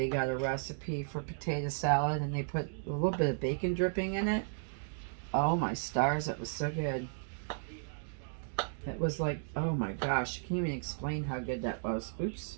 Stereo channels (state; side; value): silent; left; digital silence